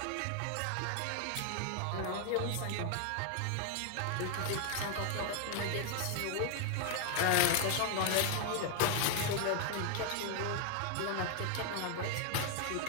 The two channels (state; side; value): different; both; correlation 0.00